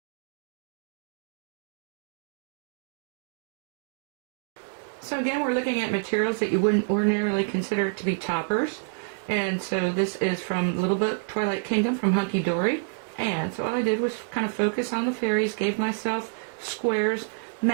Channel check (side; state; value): left; silent; digital silence